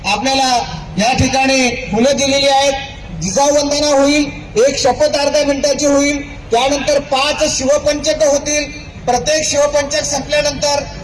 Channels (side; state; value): both; identical; correlation 1.00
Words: आपल्याला या ठिकाणी फुलं दिलेली आहेत. जिजाऊवंदना होईल, एक शपथ अर्ध्या मिनिटाची होईल, त्यानंतर 5 शिवपंचक होतील. प्रत्येक शिवपंचक संपल्यानंतर